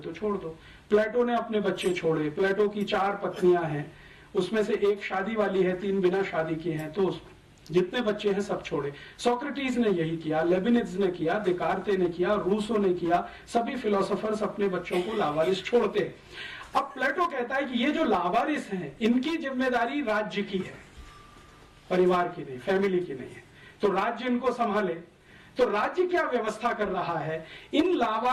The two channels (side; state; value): both; identical; correlation 1.00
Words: तो छोड़ दो। प्लेटो ने अपने बच्चे छोड़े। प्लेटो की 4 पत्नियां हैं, उसमें से एक शादी वाली है, 3 बिना शादी की हैं, तो जितने बच्चे हैं सब छोड़े। सोक्रेटिस ने यही किया, लेबिनिज ने किया, देकार्ते ने किया, रूसो ने किया। सभी फिलोसोफर्स अपने बच्चों को लावारिस छोड़ते हैं। अब प्लेटो कहता है कि ये जो लावारिस हैं, इनकी जिम्मेदारी राज्य की है, परिवार की नहीं, फैमिली की नहीं है। तो राज्य इनको संभाले। तो राज्य क्या व्यवस्था कर रहा है? इन